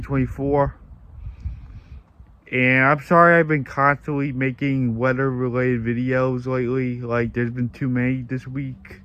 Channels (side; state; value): both; identical; correlation 1.00